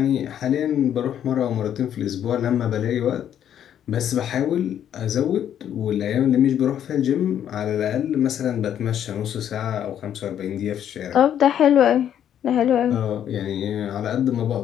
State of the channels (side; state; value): right; quieter; 9.9 dB